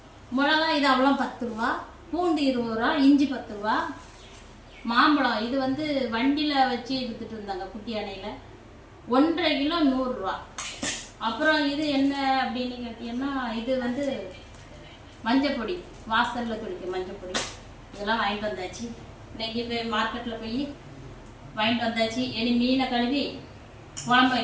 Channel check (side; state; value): both; identical; correlation 1.00